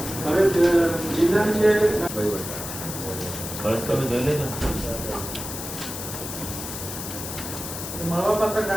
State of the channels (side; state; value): left; noise; hiss, 8 dB below the sound